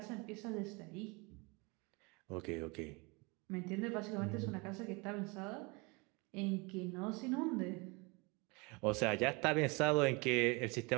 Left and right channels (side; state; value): left; quieter; 28.1 dB